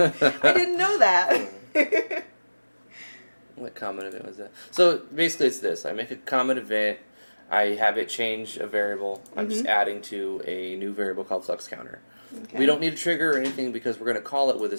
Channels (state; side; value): inverted; both; correlation -1.00